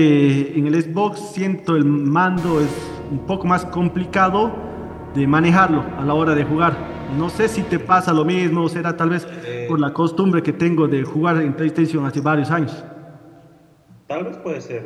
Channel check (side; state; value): both; identical; correlation 1.00